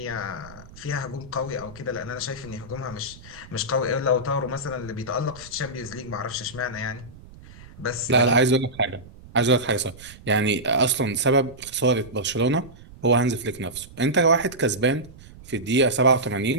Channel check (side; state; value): right; noise; rumble, 20 dB below the sound